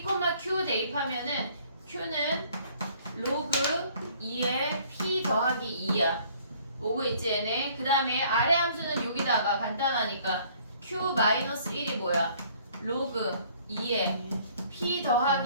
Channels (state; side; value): inverted; both; correlation -0.58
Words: Q 대입하면은 Q는 로그 2에 P 더하기 2야. 오고 있지 얘네. 그 다음에 아래 함수는 여기다가 간단하니까 Q-1이 뭐야? 로그 2에 P